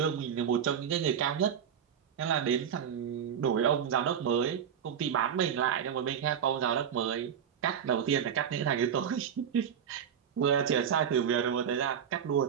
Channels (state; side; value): quieter; left; 8.3 dB